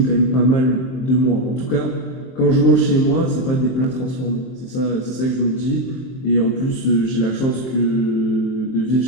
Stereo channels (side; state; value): right; late; 23 ms